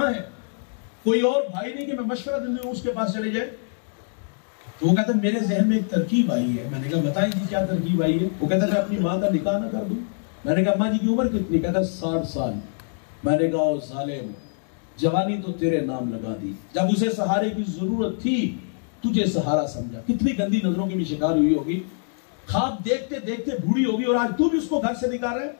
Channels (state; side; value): silent; right; digital silence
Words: है। कोई और भाई नहीं कि मैं मशवरा देने उसके पास चले जाए। तो वो कहता, मेरे जहन में एक तरकीब आई है। मैंने कहा, बताएं जी क्या तरकीब आई है? वो कहता, मैं अपनी माँ का निकाह ना कर दूं। मैंने कहा, माँ जी की उम्र कितनी? कहता, 60 साल। मैंने कहा, ओ जालिम, जवानी तो तेरे नाम लगा दी, जब उसे सहारे की जरूरत थी तुझे सहारा समझा। कितनी गंदी नजरों की भी शिकार हुई होगी, ख्वाब देखते देखते बूढ़ी होगी और आज तू भी उसको घर से निकाल रहा है।